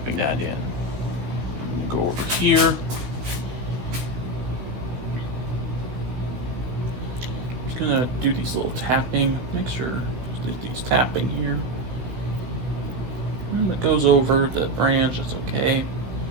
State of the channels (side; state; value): left; late; 16 ms